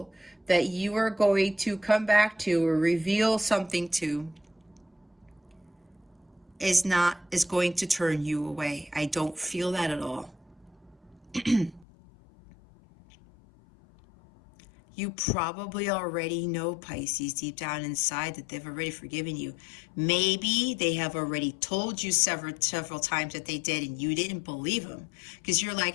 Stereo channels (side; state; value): right; drops out; at 11.9 s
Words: that you are going to come back to or reveal something to is going to turn you away. I don't feel that at all. You probably already know, Pisces, deep down inside that they've already forgiven you. Maybe they have already told you several times that they did and you didn't believe them. Because you're